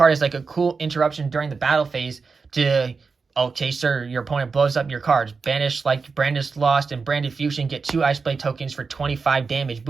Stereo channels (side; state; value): left; quieter; 4.8 dB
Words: as like a cool interruption during the battle phase to, okay, sir, your opponent blows up your cards. Banish like Branded Lost and Branded Fusion, get 2 Ice Blade tokens for 25 damage